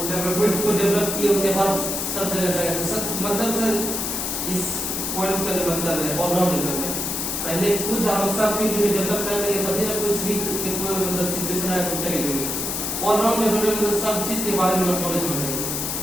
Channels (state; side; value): noise; left; hiss, 2 dB below the sound